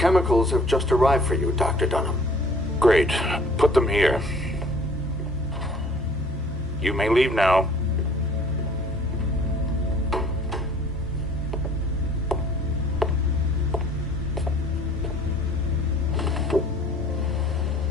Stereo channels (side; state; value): both; normal; correlation 0.54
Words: have just arrived for you, Dr. Dunham. Great. Put them here. You may leave now.